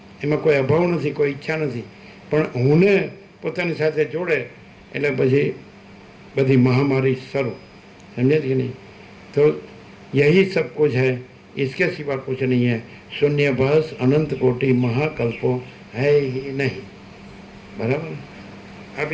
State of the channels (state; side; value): identical; both; correlation 1.00